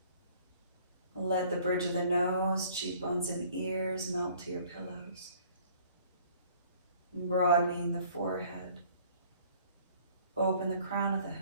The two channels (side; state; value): both; inverted; correlation -0.55